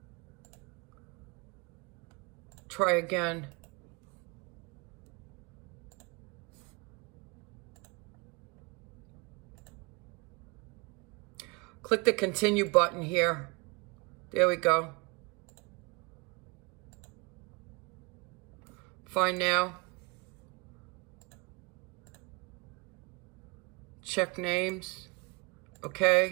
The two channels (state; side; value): quieter; left; 28.1 dB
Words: Try again. Click the continue button here. There we go. Find now. Check names.